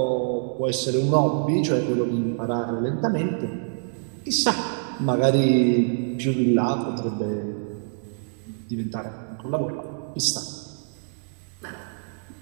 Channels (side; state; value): left; silent; digital silence